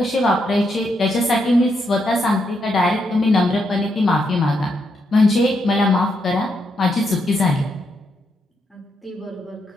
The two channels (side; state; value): both; normal; correlation 0.80